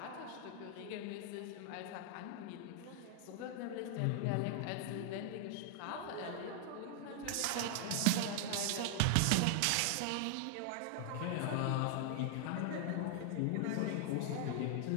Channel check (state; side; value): different; both; correlation 0.00